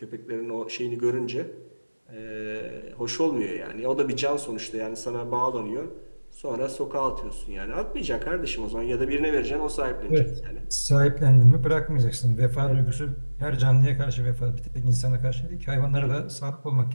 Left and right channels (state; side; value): inverted; both; correlation -1.00